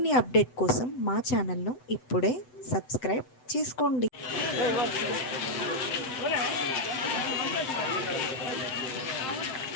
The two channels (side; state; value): right; late; 7.9 ms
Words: update కోసం మా ఛానల్ను ఇప్పుడే సబ్స్క్రైబ్ చేసుకోండి.